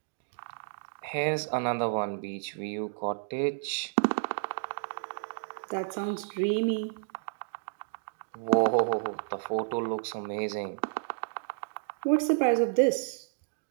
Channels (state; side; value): silent; left; digital silence